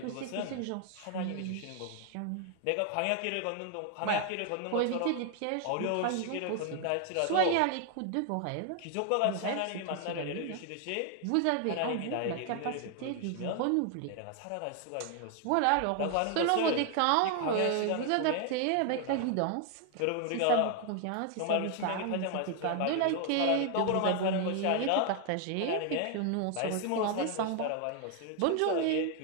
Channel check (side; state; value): both; different; correlation 0.00